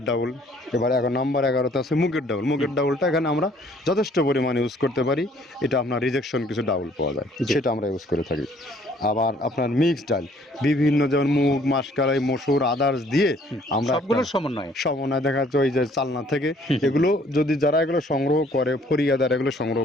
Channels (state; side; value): normal; both; correlation 0.60